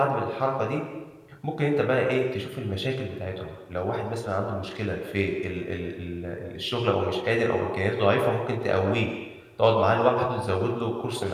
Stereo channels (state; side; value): identical; both; correlation 1.00